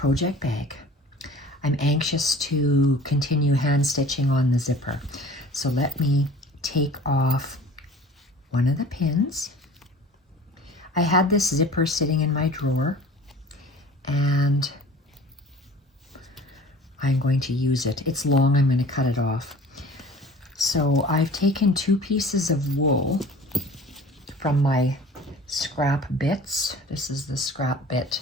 bag. I'm anxious to continue hand stitching on the zipper. So let me take off one of the pins. I had this zipper sitting in my drawer and I'm going to use it. It's long, I'm going to cut it off. So I've taken 2 pieces of wool from my scrap bits. This is the scrap bit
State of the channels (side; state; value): both; normal; correlation 0.45